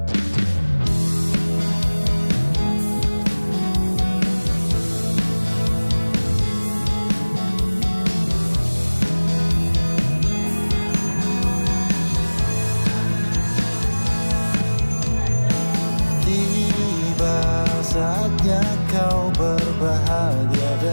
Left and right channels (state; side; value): inverted; both; correlation -1.00